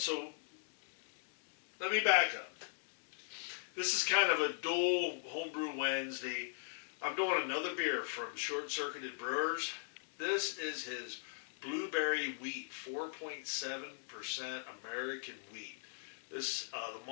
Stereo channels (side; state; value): right; silent; digital silence